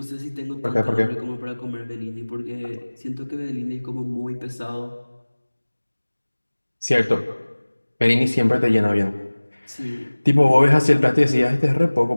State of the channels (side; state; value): both; inverted; correlation -1.00